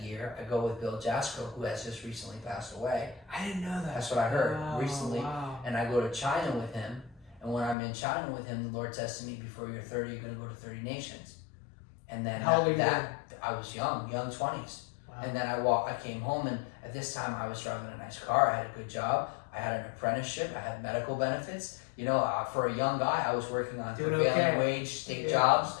year, I go with Bill Jasko, who has just recently passed away. I didn't know that. That's what I heard recently. Wow. And I go to China with him. And when I'm in China with him, the Lord says to me, before you're 30, you're going to go to 30 nations. And then how old are you then? I was young 20s. Wow. And then I came home, and at this time I was driving a nice car. I had a good job. I had an apprenticeship. I had medical benefits. You know, for a young guy, I was working on prevailing wage state jobs.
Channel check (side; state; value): right; drops out; at 7.8 s